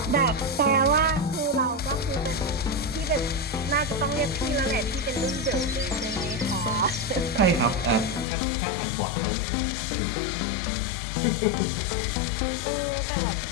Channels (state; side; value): drops out; right; at 8.2 s